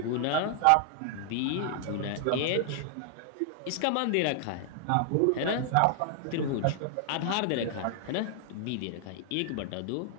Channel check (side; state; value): both; different; correlation 0.00